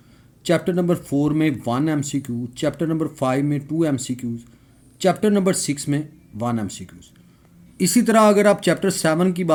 चैप्टर नंबर 4 में 1 MCQ, चैप्टर नंबर 5 में 2 MCQs, चैप्टर नंबर 6 में 1 MCQs। इसी तरह अगर आप चैप्टर 7 की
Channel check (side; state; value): both; identical; correlation 1.00